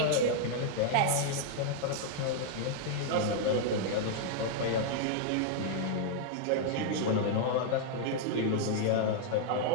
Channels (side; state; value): both; different; correlation 0.00